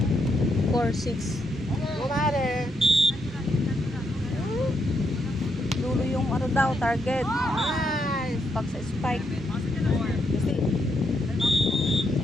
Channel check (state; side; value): normal; both; correlation 0.78